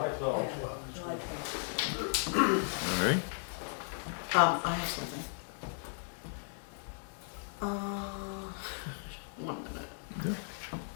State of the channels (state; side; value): silent; right; digital silence